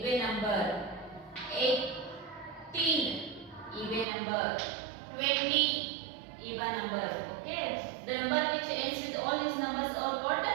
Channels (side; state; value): left; drops out; at 4.0 s